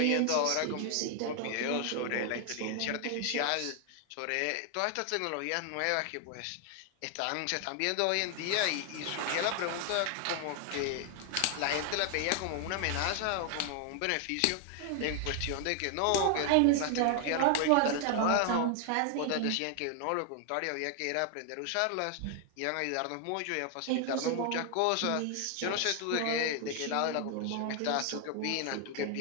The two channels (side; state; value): both; different; correlation 0.00